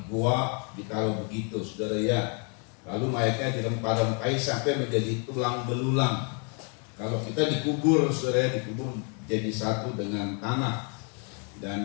gua, ditaruh begitu saudara ya. Lalu mayatnya dirempah-rempahi sampai menjadi tulang belulang. Kalau kita dikubur saudara, dikubur jadi satu dengan tanah.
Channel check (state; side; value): quieter; right; 37.9 dB